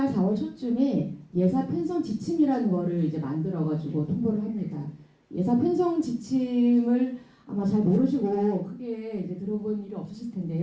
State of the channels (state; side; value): identical; both; correlation 1.00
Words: 4월 초쯤에 예산 편성 지침이라는 거를 이제 만들어가지고 통보를 합니다. 예산 편성 지침을 아마 잘 모르시고 크게 이제 들어본 일이 없으실